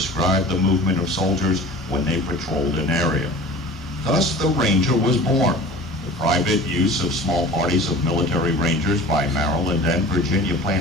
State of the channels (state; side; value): normal; both; correlation 0.40